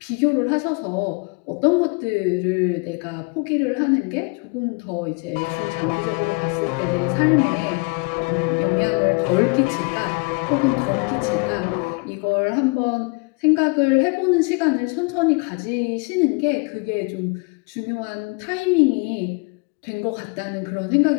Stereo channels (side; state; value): right; quieter; 30.2 dB